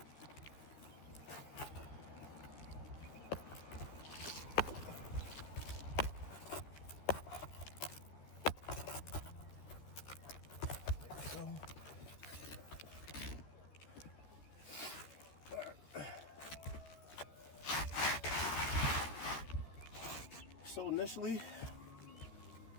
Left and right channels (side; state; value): right; late; 13 ms